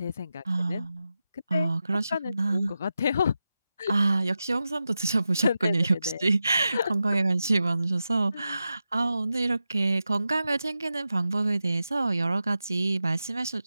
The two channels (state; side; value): inverted; both; correlation -0.91